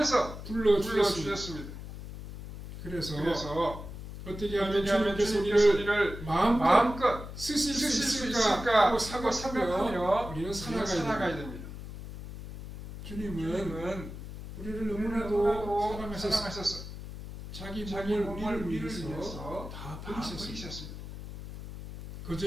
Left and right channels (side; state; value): left; noise; hum, 11 dB below the sound